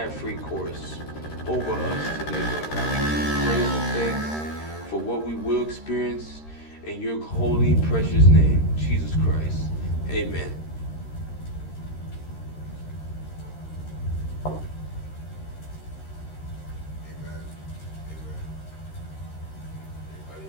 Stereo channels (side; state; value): right; late; 13 ms